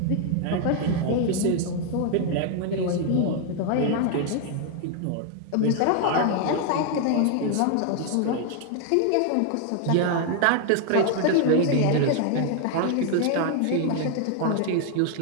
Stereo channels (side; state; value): both; different; correlation 0.00